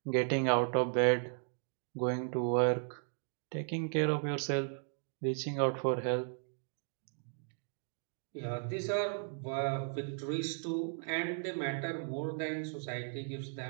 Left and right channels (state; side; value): silent; left; 54 dB below the other